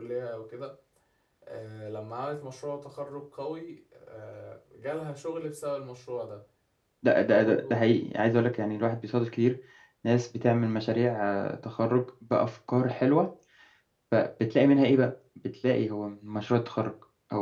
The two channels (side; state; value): both; identical; correlation 1.00